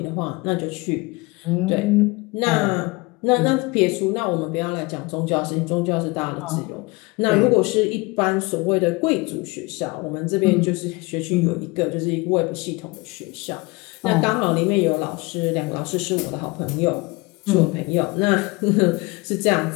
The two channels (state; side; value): quieter; right; 25.1 dB